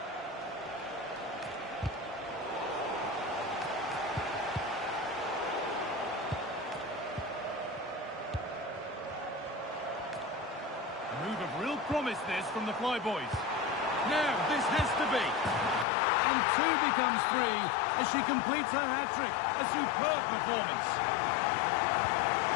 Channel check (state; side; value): drops out; right; at 15.9 s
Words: A move of real promise this from the Flyboys. Now this has to be. And two becomes three as she completes her hat-trick. A superb performance.